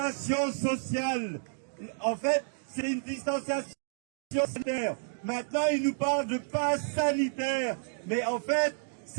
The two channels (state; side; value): silent; left; digital silence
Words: sociale. En fait, c'est une distanciation sanitaire. Maintenant, il nous parle de passe sanitaire. Mais en fait,